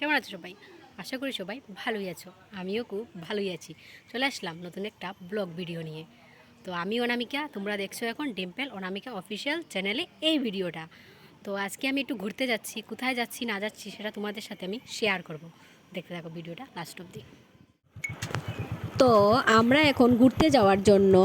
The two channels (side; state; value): both; identical; correlation 1.00